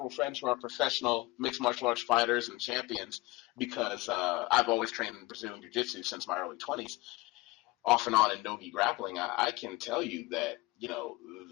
friends who are professional mixed martial arts fighters and champions because I've always trained in Brazilian Jiu-Jitsu since my early 20s, off and on in no-gi grappling. I can tell you that,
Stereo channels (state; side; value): quieter; right; 20.4 dB